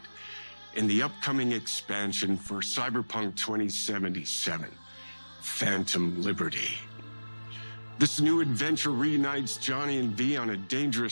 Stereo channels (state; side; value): inverted; both; correlation -1.00